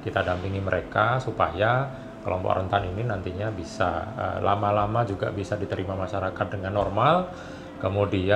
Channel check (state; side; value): identical; both; correlation 1.00